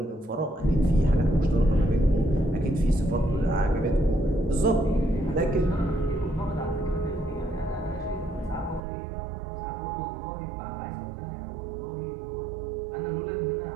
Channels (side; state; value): left; drops out; at 8.8 s